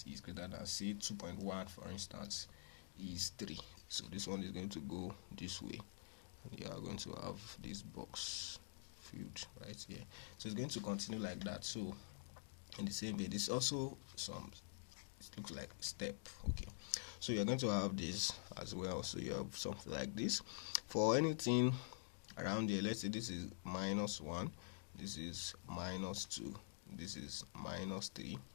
is greater than, say, 2.1 for instance, is 3. So this one is going to go this way. You are going to have this box filled right here. So it's going to continue like that. So in the same way, this also it looks like step. Okay, so you're going to have this as well. So you have something like this for anything around here. Let's say this is -1, this is -2, this is -3,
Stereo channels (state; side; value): silent; right; digital silence